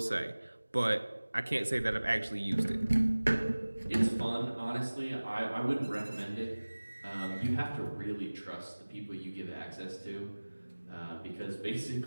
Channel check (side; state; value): both; inverted; correlation -1.00